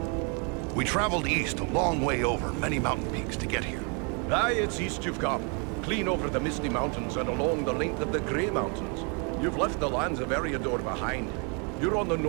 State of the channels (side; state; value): left; quieter; 35.5 dB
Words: We traveled east a long way over many mountain peaks to get here. Aye, it's east you've come. Clean over the Misty Mountains and along the length of the Grey Mountains. You've left the lands of Eriador behind. You're on the